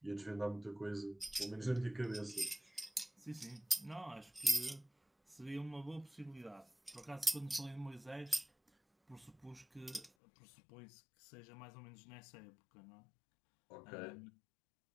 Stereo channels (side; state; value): right; drops out; at 10.1 s